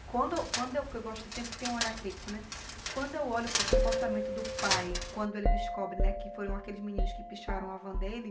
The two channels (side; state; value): both; identical; correlation 1.00